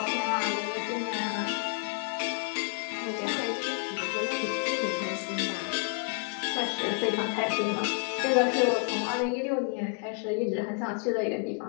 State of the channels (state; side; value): quieter; right; 34.7 dB